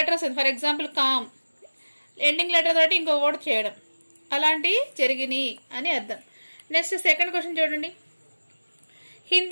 వస్తుంది, for example calm, ending letter తోటి ఇంకో వర్డ్ చేయడం, అలాంటివి జరిగినాయి అని అర్థం. నెక్స్ట్ సెకండ్ క్వశ్చన్ చూడండి,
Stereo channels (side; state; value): both; inverted; correlation -1.00